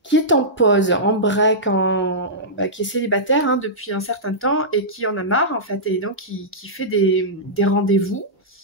est en pause, en break, qui est célibataire hein, depuis un certain temps et qui en a marre en fait, et donc qui fait des rendez-vous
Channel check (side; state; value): both; normal; correlation -0.14